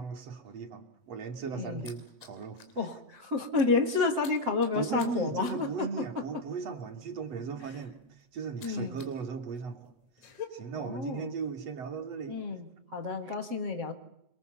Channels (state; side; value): late; left; 7.6 ms